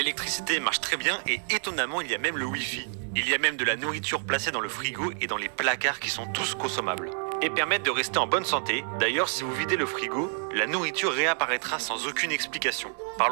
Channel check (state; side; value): silent; left; digital silence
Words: marche très bien et étonnamment il y a même le Wi-Fi. Il y a même de la nourriture placée dans le frigo et dans les placards qui sont tous consommables. Et permettent de rester en bonne santé. D'ailleurs, si vous videz le frigo, la nourriture réapparaîtra sans aucune explication.